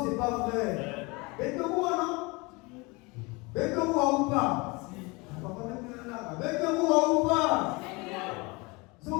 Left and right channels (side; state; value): right; quieter; 26.2 dB